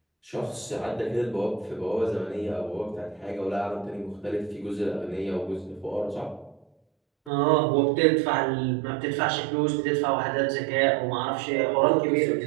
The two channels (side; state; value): left; drops out; at 7.3 s